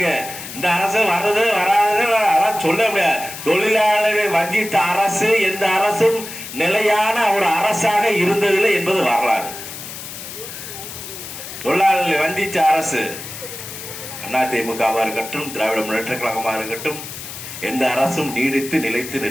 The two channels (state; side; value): noise; left; hiss, 11 dB below the sound